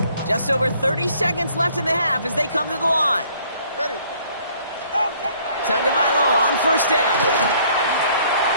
Just over 30 seconds left in the half as they come to the line. Ready. Tagovailoa on first down.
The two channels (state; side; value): inverted; both; correlation -0.60